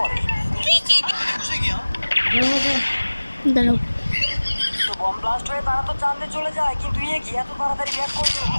দাঁড়াও তো বম ব্লাস্ট হয়ে তারা তো চাঁদে চলে যায়, কিন্তু কি এত তাড়াতাড়ি ব্যাক করলো।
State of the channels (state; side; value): inverted; both; correlation -1.00